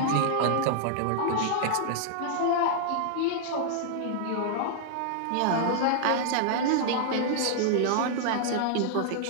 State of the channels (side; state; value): both; different; correlation -0.01